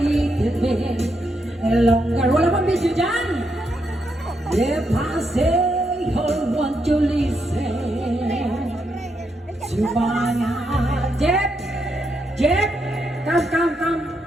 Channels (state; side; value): normal; both; correlation 0.80